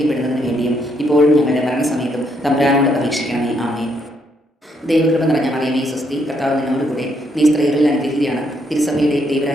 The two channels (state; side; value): normal; both; correlation 0.74